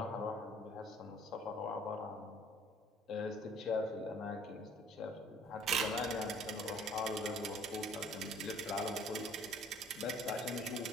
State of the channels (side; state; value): both; normal; correlation 0.54